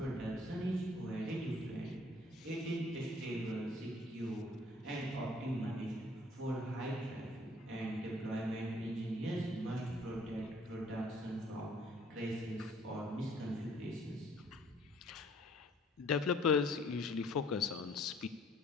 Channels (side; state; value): both; normal; correlation 0.59